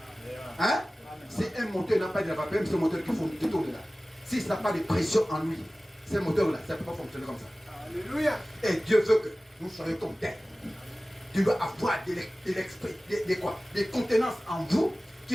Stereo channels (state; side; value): normal; both; correlation 0.97